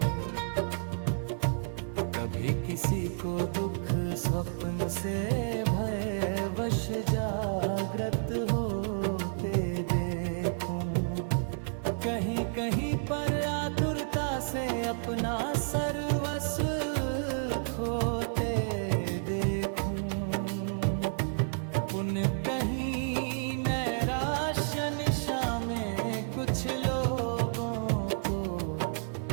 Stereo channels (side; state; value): left; silent; digital silence